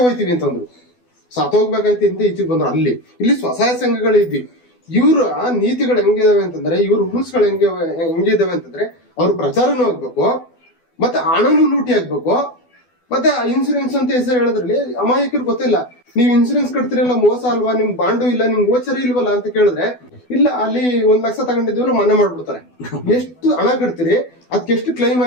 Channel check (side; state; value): right; late; 12 ms